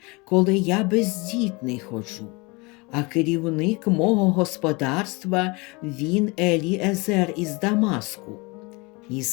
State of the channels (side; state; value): right; quieter; 26.8 dB